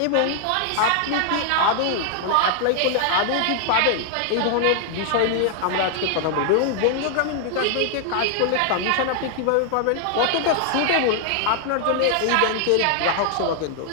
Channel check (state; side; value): different; both; correlation 0.00